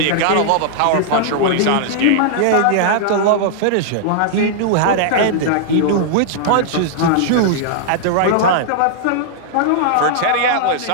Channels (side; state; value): both; different; correlation -0.01